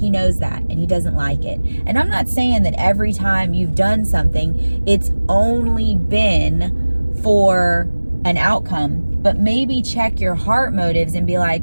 knows that, and He doesn't like it. And I'm not saying that every time you've done something, it's only been for an outcome, but maybe check your heart motives and be like,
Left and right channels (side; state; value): both; inverted; correlation -1.00